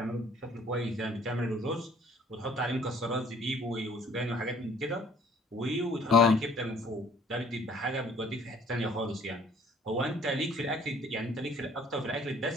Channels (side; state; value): both; normal; correlation 0.57